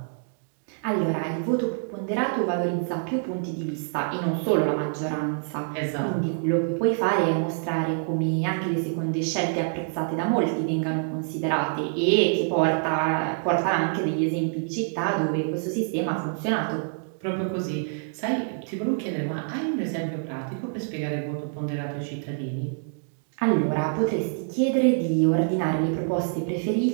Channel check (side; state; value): left; silent; digital silence